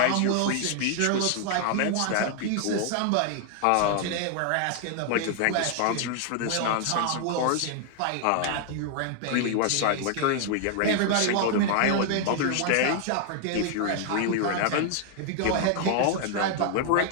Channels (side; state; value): both; different; correlation 0.00